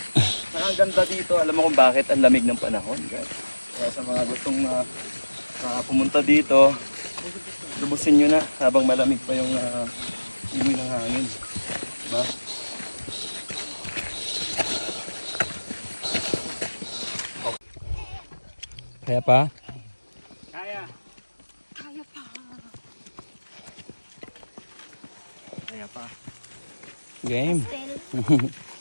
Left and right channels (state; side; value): inverted; both; correlation -1.00